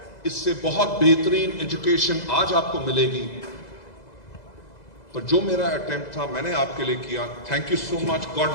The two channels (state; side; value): late; right; 2.0 ms